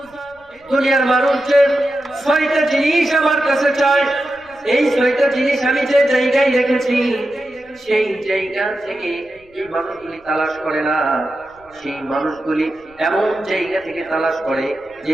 দুনিয়ার মানুষের 6টা জিনিস আমার কাছে চাই, এই 6টা জিনিস আমি যে জায়গায় রেখেছি সেই জায়গা থেকে এই মানুষগুলি তালাশ করে না, সেই মানুষগুলি এমন জায়গা থেকে তালাশ করে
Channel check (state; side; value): noise; left; rumble, 29 dB below the sound